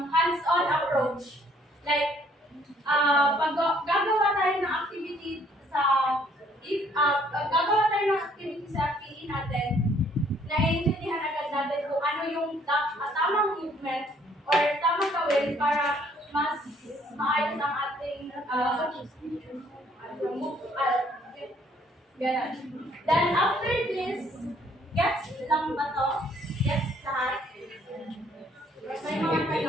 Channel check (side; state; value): both; normal; correlation 0.63